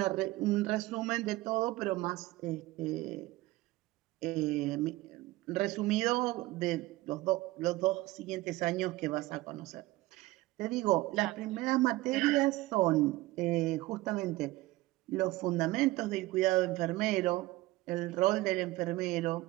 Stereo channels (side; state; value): left; quieter; 19.0 dB